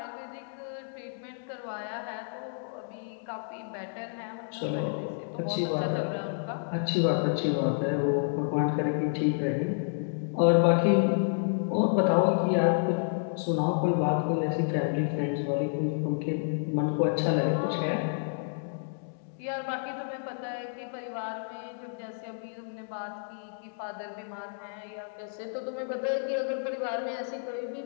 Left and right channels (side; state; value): right; silent; digital silence